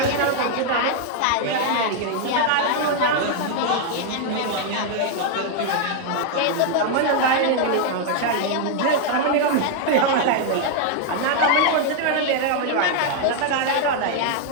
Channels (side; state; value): both; different; correlation 0.00